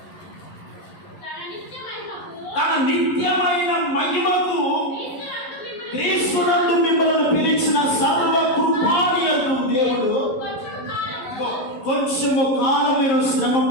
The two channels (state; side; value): late; right; 11 ms